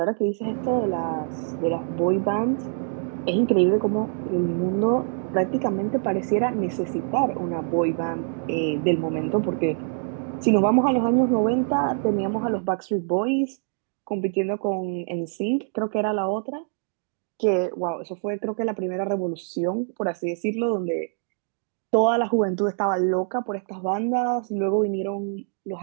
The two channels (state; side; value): silent; left; 62 dB below the other